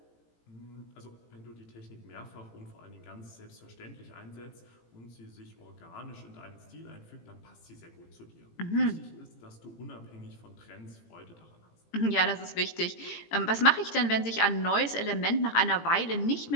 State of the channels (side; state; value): right; late; 18 ms